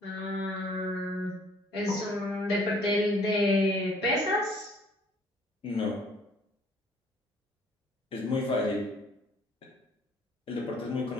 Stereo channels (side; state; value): both; normal; correlation 0.58